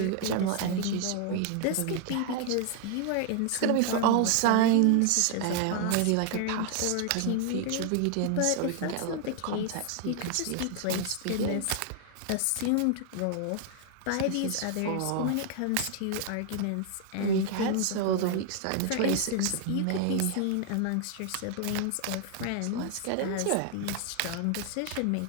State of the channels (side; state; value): both; different; correlation 0.00